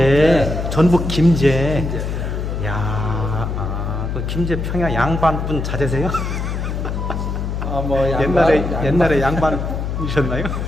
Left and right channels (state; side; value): noise; left; hum, 3 dB below the sound